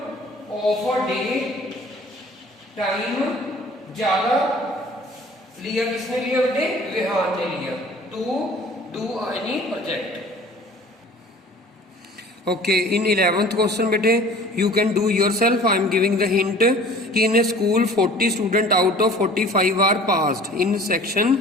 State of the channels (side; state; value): both; normal; correlation 0.48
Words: ऑफ अ डे टाइम ज्यादा लिया किसने लिया बेटे? विहान ने लिया to do any project. Okay, in 11th question बेटे you can do yourself. I am giving the hint कि in a school 40 student out of 45 are passed in section